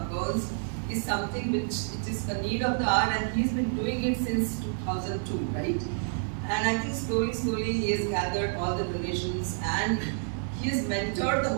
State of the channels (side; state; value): left; silent; digital silence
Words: girls is something which it is a need of the hour, and he's been doing it since 2002, right? And I think slowly he has gathered all the donations, and he has mentored the